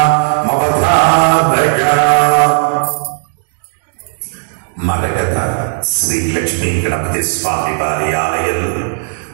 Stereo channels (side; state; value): left; silent; digital silence